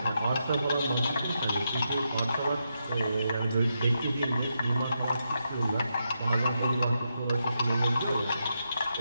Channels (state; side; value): inverted; both; correlation -0.83